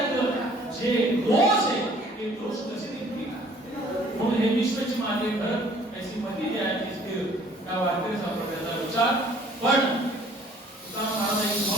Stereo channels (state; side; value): normal; both; correlation 0.56